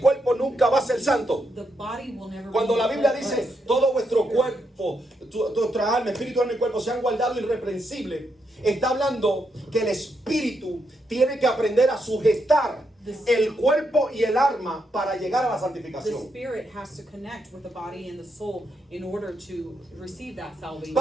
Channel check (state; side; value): normal; both; correlation 0.80